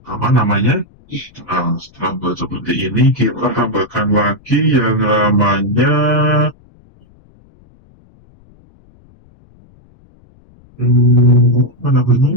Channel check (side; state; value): left; noise; rumble, 29 dB below the sound